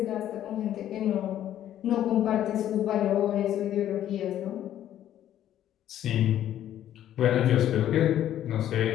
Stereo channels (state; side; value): quieter; right; 11.6 dB